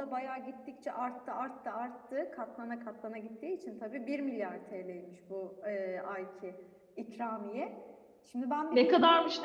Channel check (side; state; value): both; identical; correlation 1.00